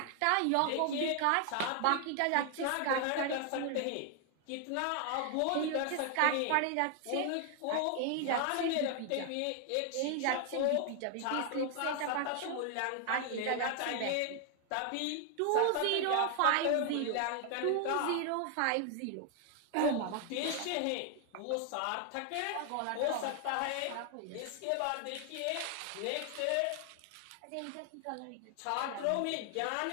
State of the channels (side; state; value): both; different; correlation 0.00